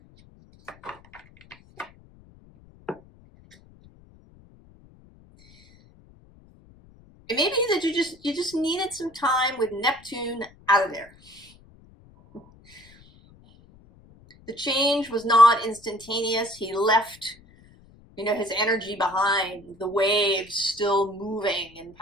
It may be that you just needed some time with Neptune out of there. The change was not instantaneous. He left, you know, his energy behind, the waves still moving in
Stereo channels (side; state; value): left; noise; rumble, 26 dB below the sound